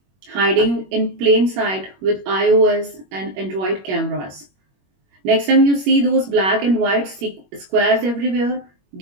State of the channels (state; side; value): late; left; 21 ms